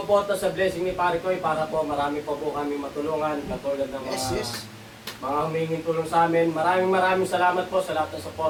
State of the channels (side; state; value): both; identical; correlation 1.00